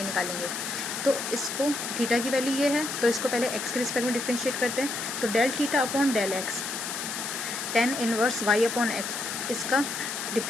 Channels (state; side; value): noise; left; hiss, 5 dB below the sound